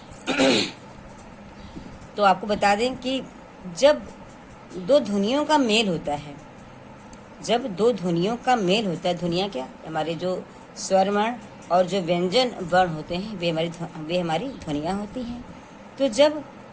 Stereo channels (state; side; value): identical; both; correlation 1.00